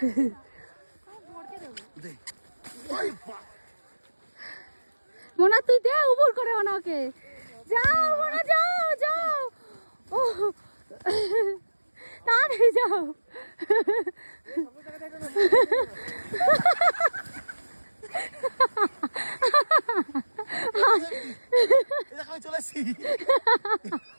মোনা তুই দে উপর করে ওনাকে। যাও মোনা যাও ও তাড়াতাড়ি যাও। চলে আসছি।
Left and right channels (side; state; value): both; inverted; correlation -1.00